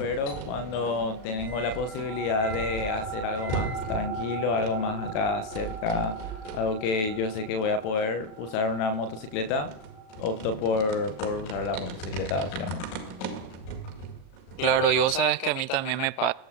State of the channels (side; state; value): right; late; 36 ms